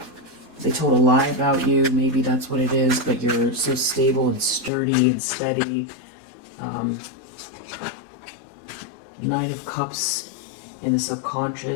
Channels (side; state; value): right; drops out; at 4.7 s